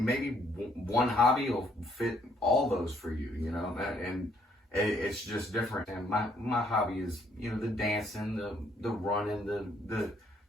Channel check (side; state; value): both; normal; correlation 0.67